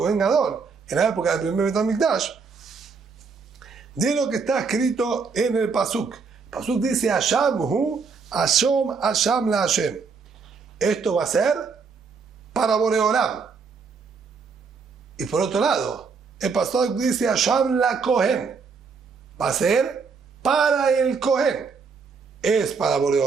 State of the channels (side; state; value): left; quieter; 5.2 dB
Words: Gadol, en la época del primer Bet HaMikdash, de lo que está escrito en el Pasuk. El Pasuk dice, Hasham hu, Hasham la Hashem. Esto va a ser para Borei Olam. Y por otro lado, el Pasuk dice, Hasham la Kohen. Va a ser para el Kohen. ¿Es para Borei